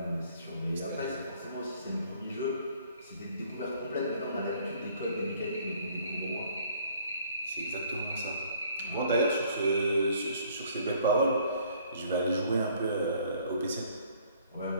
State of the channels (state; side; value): inverted; both; correlation -0.59